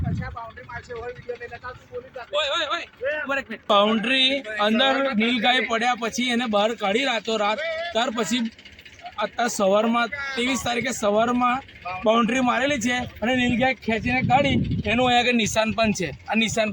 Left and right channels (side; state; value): both; identical; correlation 1.00